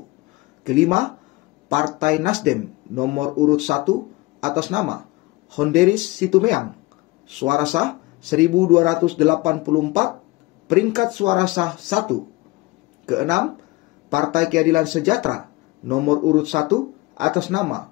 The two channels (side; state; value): right; quieter; 21.6 dB